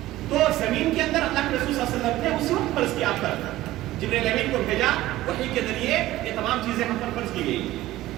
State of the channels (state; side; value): quieter; left; 16.0 dB